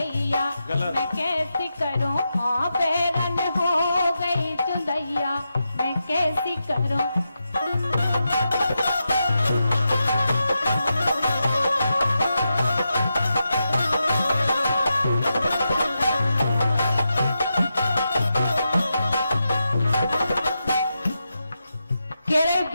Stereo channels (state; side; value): inverted; both; correlation -0.87